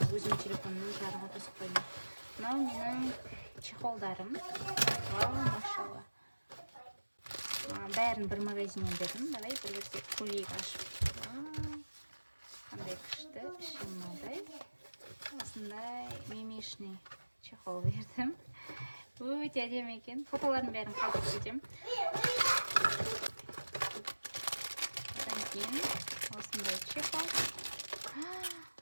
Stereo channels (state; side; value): inverted; both; correlation -1.00